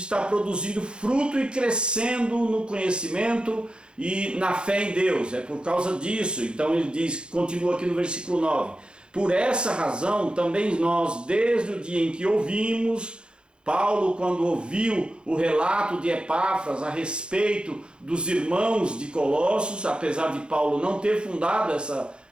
produzindo fruto e crescendo no conhecimento e na fé em Deus. É por causa disso. Então ele diz, continua aqui no versículo 9, por essa razão também nós, desde o dia em que ouvimos, Paulo, quando ouviu o relato de Epáfras a respeito dos irmãos de Colossos, apesar de Paulo não ter fundado essa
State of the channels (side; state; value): left; late; 0.052 ms